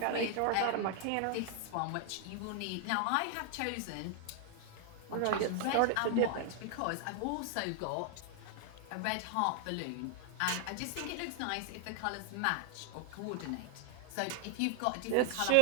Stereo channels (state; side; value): different; both; correlation 0.00